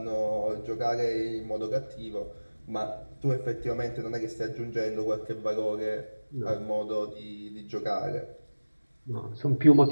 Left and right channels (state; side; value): inverted; both; correlation -1.00